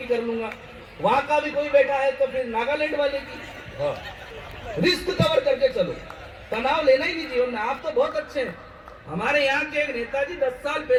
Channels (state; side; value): identical; both; correlation 1.00